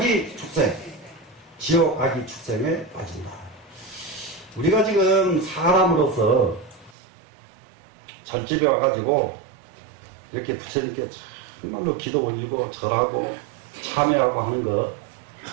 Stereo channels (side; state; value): left; drops out; at 7.0 s